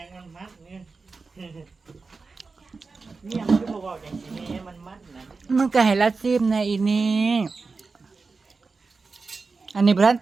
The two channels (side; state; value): left; quieter; 4.3 dB